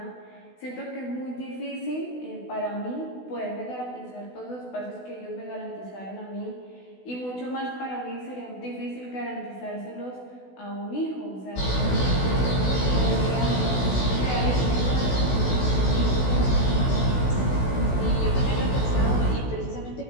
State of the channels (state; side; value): late; right; 16 ms